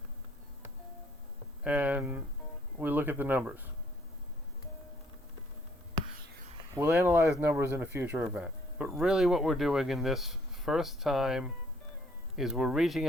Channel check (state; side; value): normal; both; correlation 0.65